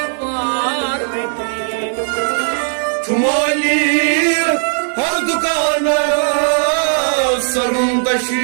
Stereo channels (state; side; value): silent; left; 69 dB below the other